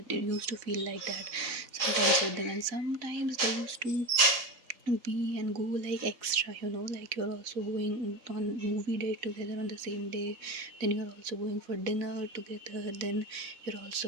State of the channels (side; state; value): left; late; 4.1 ms